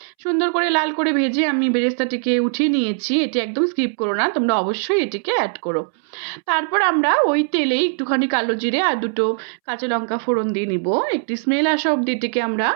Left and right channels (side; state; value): left; silent; 65 dB below the other